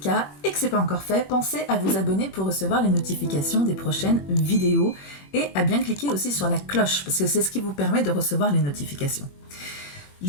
et que ce n'est pas encore fait, pensez à vous abonner pour recevoir les notifications des prochaines vidéos et à bien cliquer aussi sur la cloche parce que c'est ce qui vous permet de recevoir les notifications.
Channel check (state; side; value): late; right; 21 ms